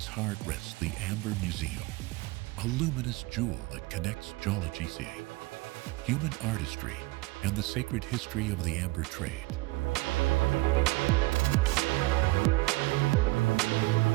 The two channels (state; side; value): quieter; left; 22.1 dB